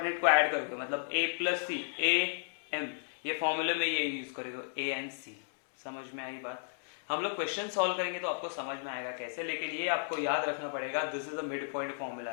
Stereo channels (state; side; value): silent; right; digital silence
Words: को ऐड करोगे, मतलब ए प्लस सी ए एम, ये फॉर्मूले में ये यूज करोगे ए एंड सी। समझ में आई बात, हम लोग क्वेश्चन सॉल्व करेंगे तो आपको समझ में आएगा कैसे, लेकिन ये आपको याद रखना पड़ेगा, this is the mid point